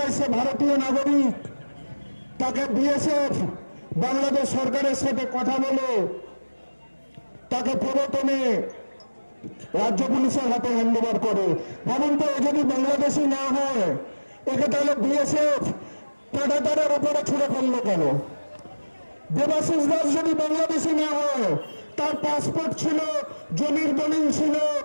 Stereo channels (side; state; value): both; inverted; correlation -1.00